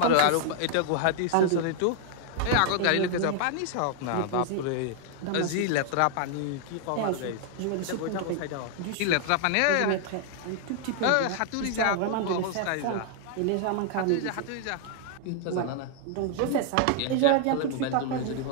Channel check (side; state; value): both; different; correlation 0.00